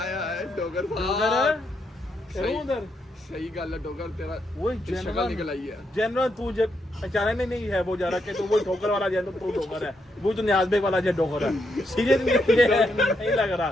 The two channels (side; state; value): both; normal; correlation 0.79